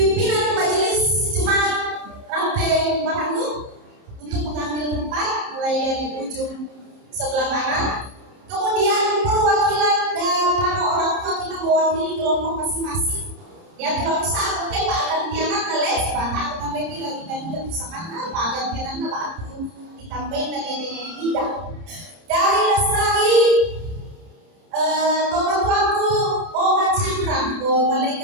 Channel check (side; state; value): left; late; 30 ms